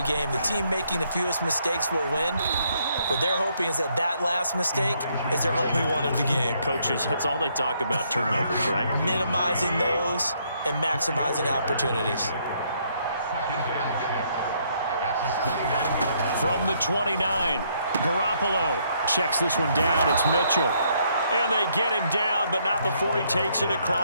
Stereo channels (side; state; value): both; inverted; correlation -0.71